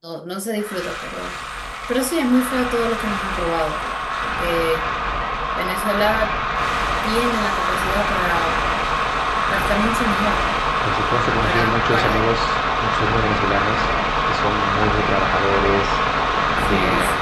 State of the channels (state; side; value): identical; both; correlation 1.00